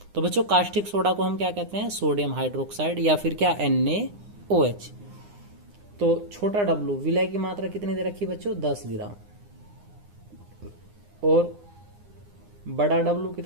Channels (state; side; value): late; left; 9.7 ms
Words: तो बच्चों कास्टिक सोडा को हम क्या कहते हैं, सोडियम हाइड्रोक्साइड या फिर क्या NaOH। तो छोटा W विलय की मात्रा कितनी दे रखी बच्चों 10 ग्राम, और बड़ा W